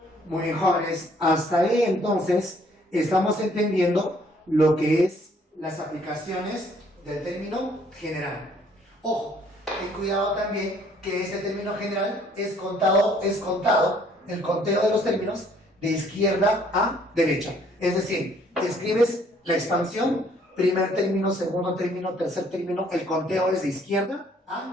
Muy bien, jóvenes, hasta ahí entonces estamos entendiendo lo que es las aplicaciones del término general. Ojo, ten cuidado también que este término general es contado el conteo de los términos de izquierda a derecha. Es decir, escribes la expansión, primer término, segundo término, tercer término, el conteo es de izquierda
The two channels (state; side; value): normal; both; correlation 0.62